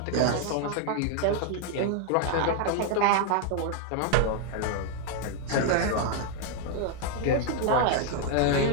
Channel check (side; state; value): both; different; correlation 0.00